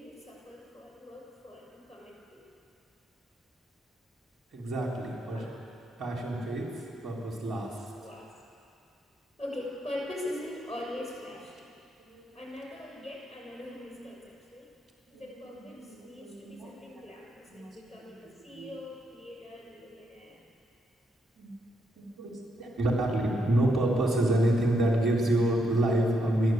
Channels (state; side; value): normal; both; correlation 0.78